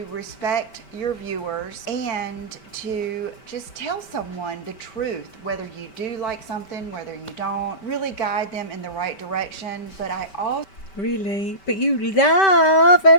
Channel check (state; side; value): late; right; 5.2 ms